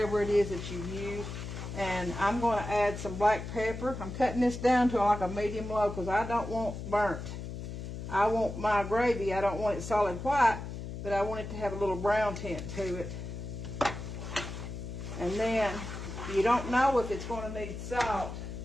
it is that you've used. And I'm going to add some black pepper. I'm cutting this down to like a medium low because I don't want burnt. I want my gravy, I don't want it solid white, but I want it to have a little brown tint to it. And then you don't know if it's going to need salt.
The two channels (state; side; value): noise; left; hum, 8 dB below the sound